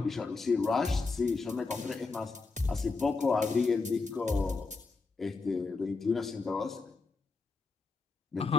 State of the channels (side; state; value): right; quieter; 4.0 dB